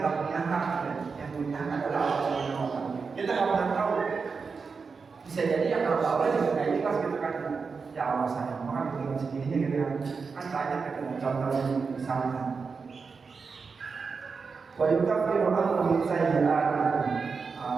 punya hak, yang punya hak adalah Allah Subhanahu wa Ta'ala. Kita nggak pernah tahu. Bisa jadi yang kalau Allah juga nggak ikhlas gitu kan? Ya Allah sayang, maka bikin segininya gitu kan banyak gitu. Contohnya misalnya, wa yukaffiru ankum min sayyi'atikum.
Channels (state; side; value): quieter; left; 5.0 dB